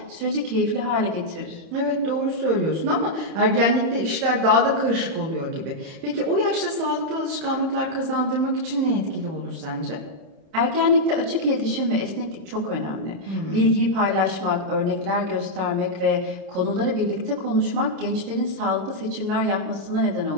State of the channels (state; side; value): late; left; 30 ms